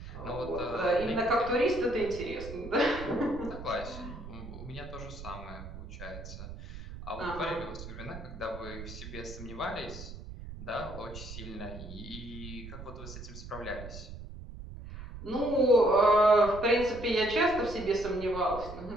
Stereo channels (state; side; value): noise; right; rumble, 12 dB below the sound